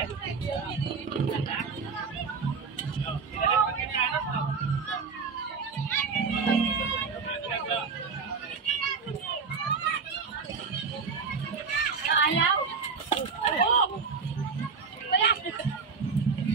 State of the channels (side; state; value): left; quieter; 5.2 dB